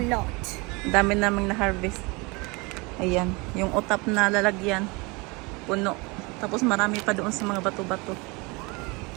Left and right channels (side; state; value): left; quieter; 27.0 dB